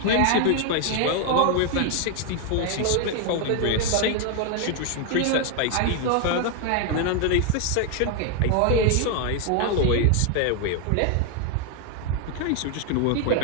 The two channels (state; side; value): different; both; correlation 0.01